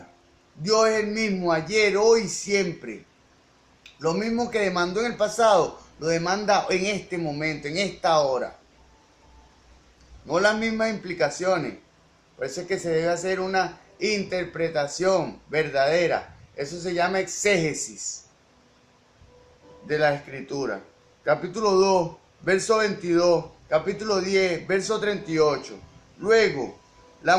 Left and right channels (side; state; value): both; identical; correlation 1.00